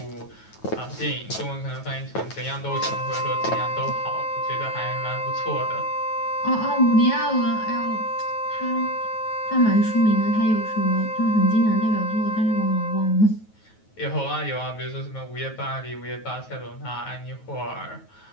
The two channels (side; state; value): right; late; 9.3 ms